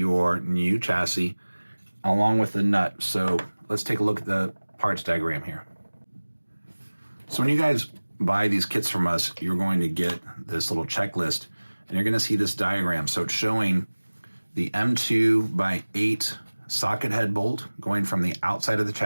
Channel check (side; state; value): both; inverted; correlation -1.00